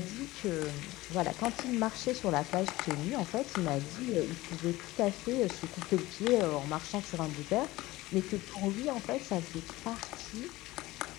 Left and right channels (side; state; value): right; quieter; 18.7 dB